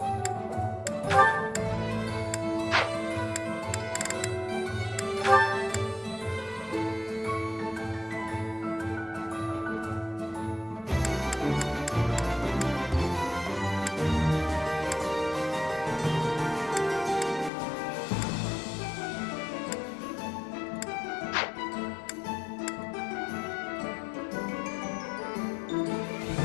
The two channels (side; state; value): right; drops out; at 17.5 s